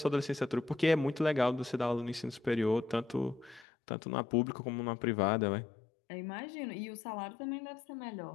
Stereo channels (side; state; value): right; drops out; at 3.7 s